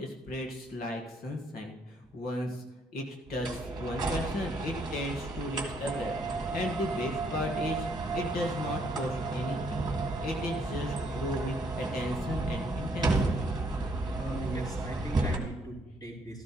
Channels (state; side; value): normal; both; correlation 0.69